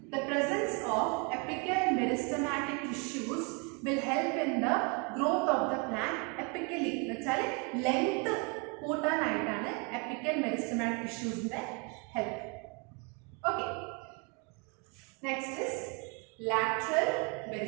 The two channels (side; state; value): left; quieter; 33.5 dB